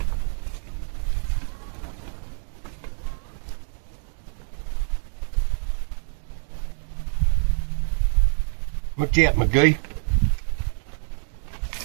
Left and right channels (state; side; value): silent; left; 57 dB below the other